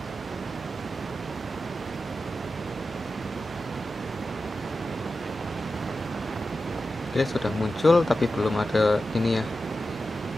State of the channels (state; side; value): normal; both; correlation 0.92